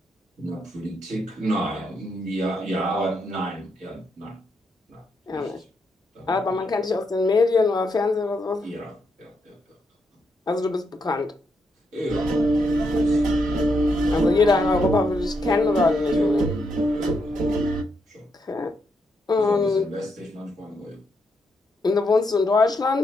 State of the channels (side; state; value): both; normal; correlation 0.79